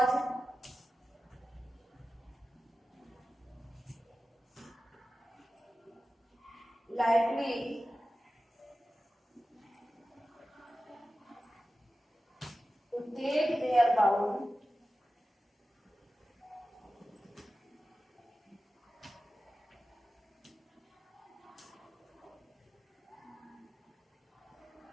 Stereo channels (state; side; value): normal; both; correlation 0.94